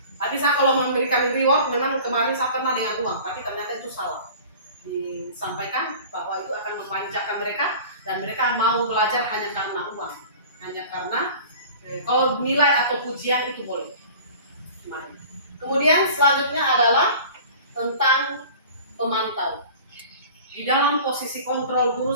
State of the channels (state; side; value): inverted; both; correlation -0.42